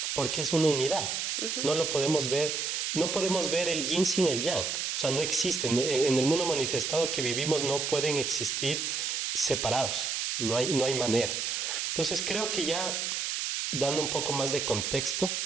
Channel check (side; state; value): right; noise; hiss, 1 dB below the sound